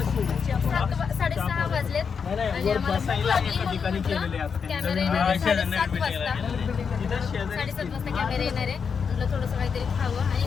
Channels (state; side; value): quieter; right; 6.2 dB